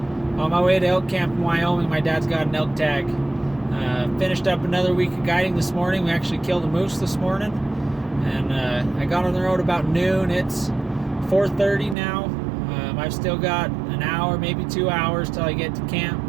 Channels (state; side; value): drops out; left; at 12.0 s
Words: on my way to elk camp in Wyoming, my dad's got an elk tag. Finished up another week of guiding this morning. We actually killed a moose this morning, and I got on the road about noon. It's 4:30 now. I've still got an hour, maybe 2 hours till I get to camp,